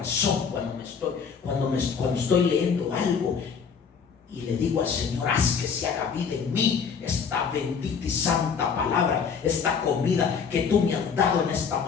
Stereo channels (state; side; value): quieter; right; 6.3 dB